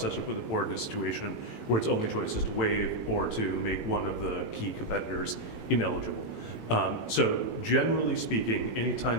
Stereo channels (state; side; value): late; right; 18 ms